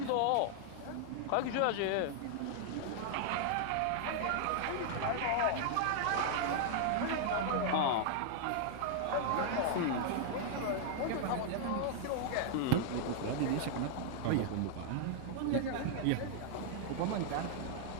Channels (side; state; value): both; different; correlation -0.01